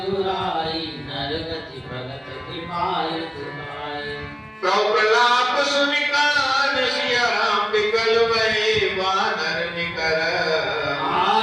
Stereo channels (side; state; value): both; identical; correlation 1.00